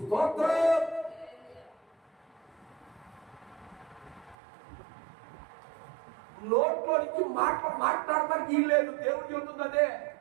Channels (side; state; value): left; drops out; at 4.4 s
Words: స్తోత్రం. నోట్లో నుంచి మాట్లాడటానికి వీలు లేదు. దేవుడు చెబుతుంది అదే.